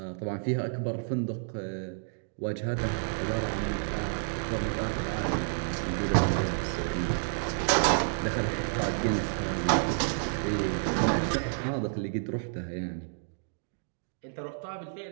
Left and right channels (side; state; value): left; silent; digital silence